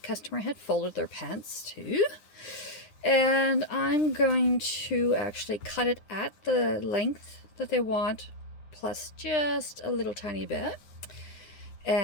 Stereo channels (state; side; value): late; right; 9.5 ms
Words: had folded their pants to. And I'm going to actually cut it at the length that they want, plus just a little tiny bit.